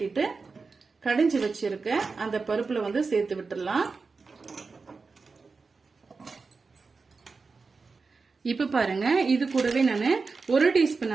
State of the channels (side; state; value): left; quieter; 4.4 dB